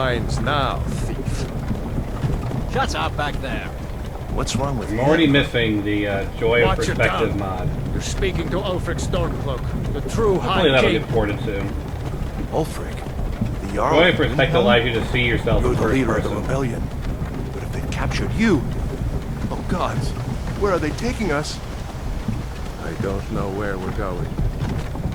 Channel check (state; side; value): identical; both; correlation 1.00